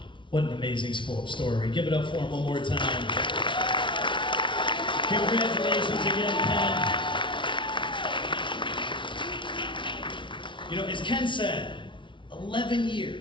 What an amazing story. Give it up for him one more time. Congratulations again, Ken. You know, as Ken said, 11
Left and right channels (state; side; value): late; right; 0.24 ms